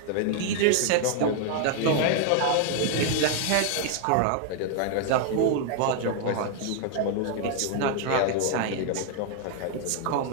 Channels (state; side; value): different; both; correlation 0.00